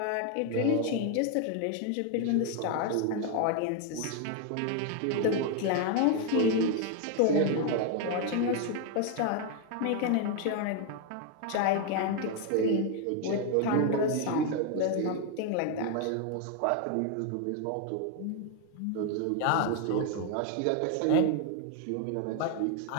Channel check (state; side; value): different; both; correlation 0.01